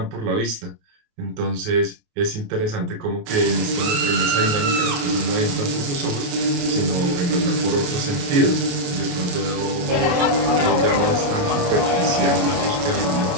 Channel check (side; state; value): left; late; 28 ms